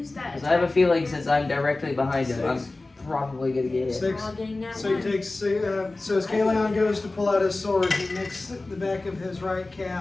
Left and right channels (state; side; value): quieter; right; 3.1 dB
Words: that? Because I have a feeling since I'm directly behind him, I'm 6. probably gonna get hit. 6. All getting that So he one. takes. So as Kaleon goes to pull out his sword, he nicks the back of his right